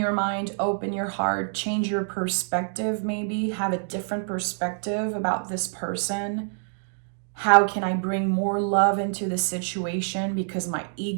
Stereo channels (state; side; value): silent; left; digital silence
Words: mind, open your heart, change your perspective, maybe have a different perspective about this person. How can I bring more love into the situation because my